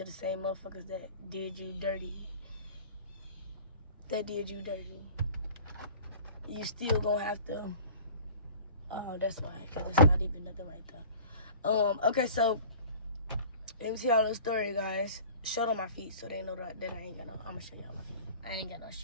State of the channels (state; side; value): inverted; both; correlation -0.43